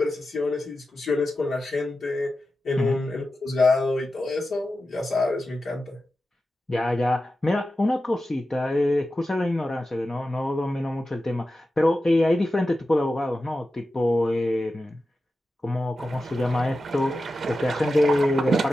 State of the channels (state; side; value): normal; both; correlation 0.92